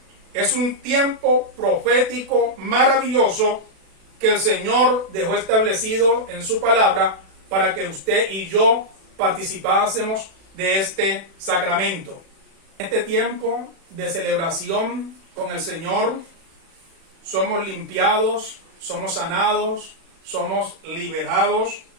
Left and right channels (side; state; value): left; late; 36 ms